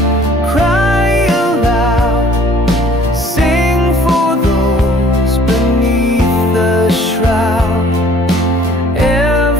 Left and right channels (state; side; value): normal; both; correlation 0.56